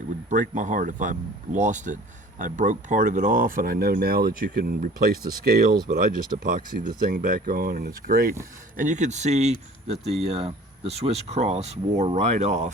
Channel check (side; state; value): both; normal; correlation 0.47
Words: would break my heart if I lost it. I broke part of it off, and I know now that you can replace the scales, but I just epoxied the thing back on, and it's great. And you can see that the Swiss cross wore right